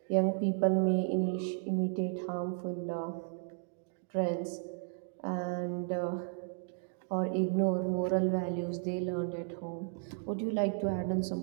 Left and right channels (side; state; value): left; silent; digital silence